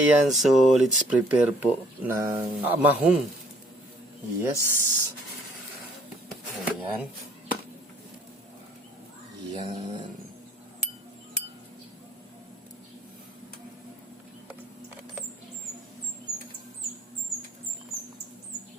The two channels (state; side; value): normal; both; correlation 0.60